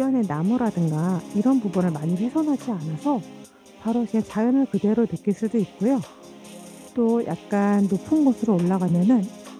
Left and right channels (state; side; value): identical; both; correlation 1.00